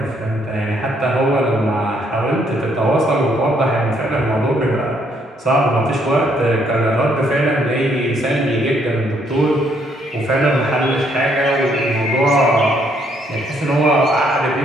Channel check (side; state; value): both; normal; correlation 0.70